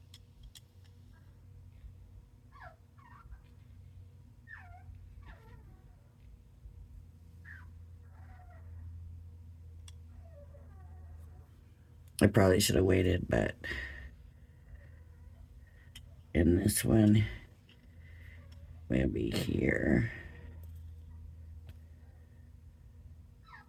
I probably should have waited, but in this one, will be here.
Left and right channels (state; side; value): identical; both; correlation 1.00